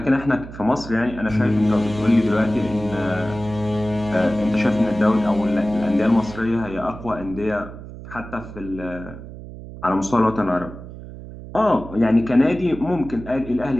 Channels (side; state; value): right; noise; hum, 13 dB below the sound